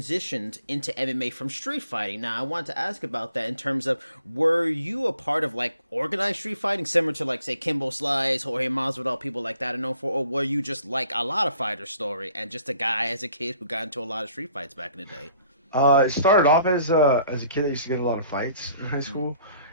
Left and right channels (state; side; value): inverted; both; correlation -0.59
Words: into MMA from street fighting. Now, I want to ask about that in terms of, were you a part of like organized street fighting, similar to like, say, Kimbo Slice, Jorge Masvidal, people like that are known for, or were you just like a lot of fighter story and just a guy as a kid who got into a lot of street fights back in the day? It started off as a kid that used to get a lot of fights in high school,